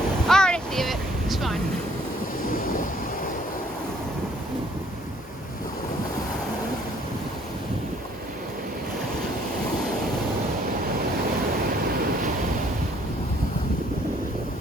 Alright, leave it. It's fine.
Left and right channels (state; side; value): normal; both; correlation 0.62